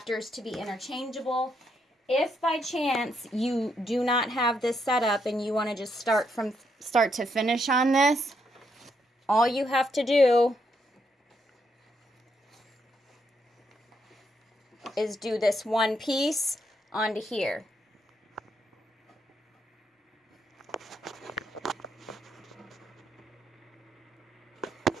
to be interchangeable. If by chance you do not have this setup and you want to just start from start to finish on this, all you have to do is do this one piece onto here.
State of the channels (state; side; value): normal; both; correlation 0.77